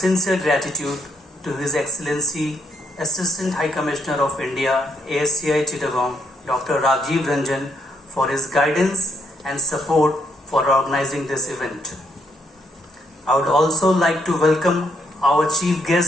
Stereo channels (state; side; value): normal; both; correlation 0.75